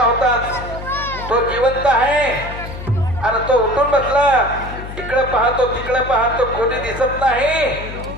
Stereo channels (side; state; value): left; noise; hum, 10 dB below the sound